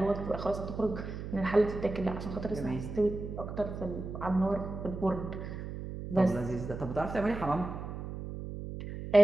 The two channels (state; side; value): noise; right; hum, 8 dB below the sound